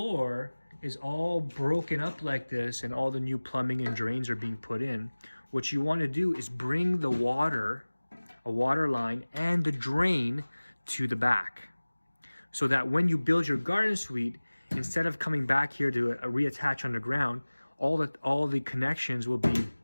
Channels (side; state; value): both; inverted; correlation -1.00